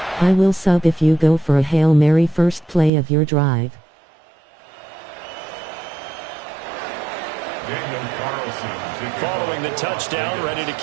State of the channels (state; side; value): drops out; left; at 2.9 s